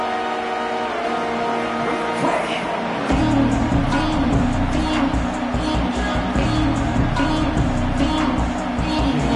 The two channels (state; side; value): identical; both; correlation 1.00